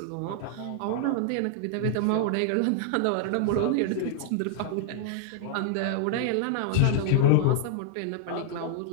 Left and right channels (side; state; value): both; different; correlation 0.00